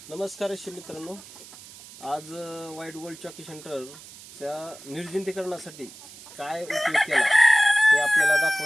नमस्कार रेशीम मित्रांनो, आज व्हाईट गोल्ड चॉकी सेंटरच्या निर्जंतुकीकरणासाठी काय उपयोग केला ते आपल्याला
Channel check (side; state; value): right; noise; hiss, 18 dB below the sound